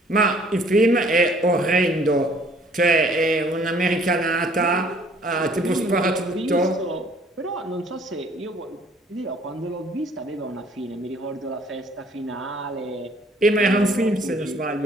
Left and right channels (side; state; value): both; normal; correlation 0.58